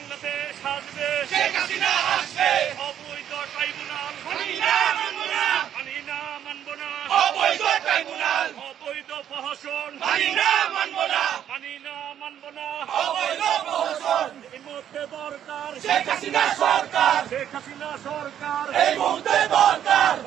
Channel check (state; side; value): quieter; left; 10.1 dB